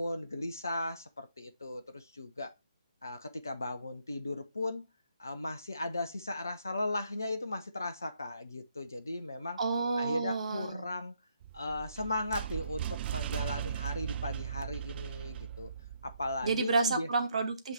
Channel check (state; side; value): inverted; both; correlation -0.73